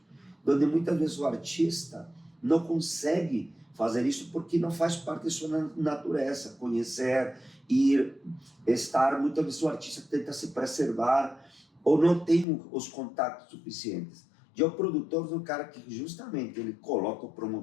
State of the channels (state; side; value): drops out; right; at 12.5 s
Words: onde muitas vezes o artista não consegue fazer isso porque não faz parte da sua natureza, conhecer, ir, estar. Muitas vezes o artista tenta se preservar ou não tem os contatos suficientes. E o produtor do cara que justamente ele coloca